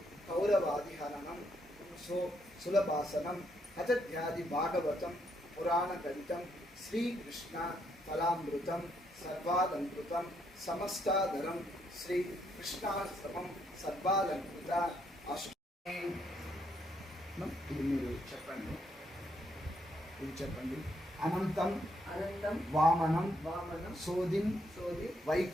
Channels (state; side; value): normal; both; correlation 0.75